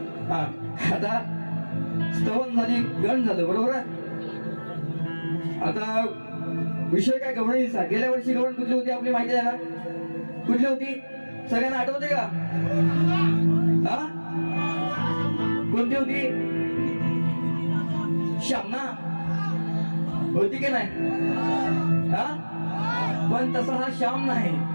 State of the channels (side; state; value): both; inverted; correlation -1.00